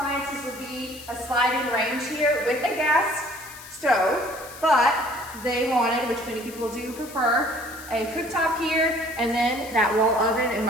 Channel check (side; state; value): left; noise; hiss, 16 dB below the sound